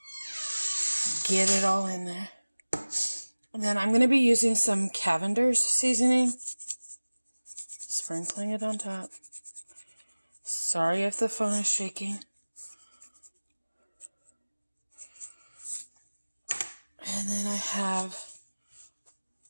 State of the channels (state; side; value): inverted; both; correlation -1.00